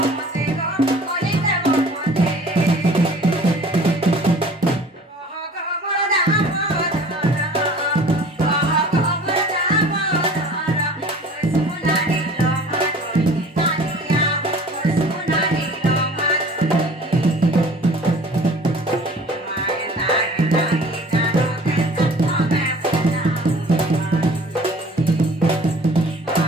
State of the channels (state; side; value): normal; both; correlation 0.47